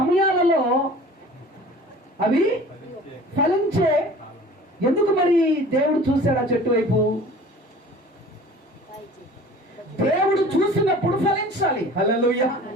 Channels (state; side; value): normal; both; correlation 0.44